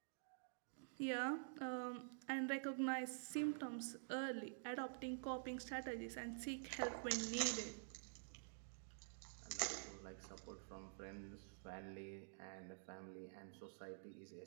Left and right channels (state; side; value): silent; left; digital silence